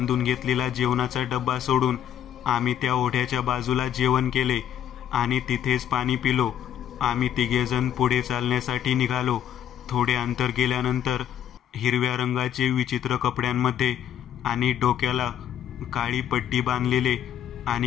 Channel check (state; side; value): quieter; right; 10.1 dB